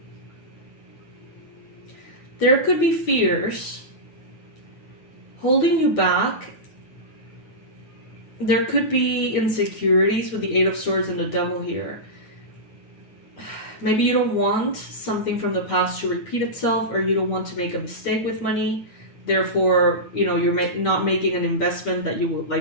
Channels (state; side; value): late; right; 8.9 ms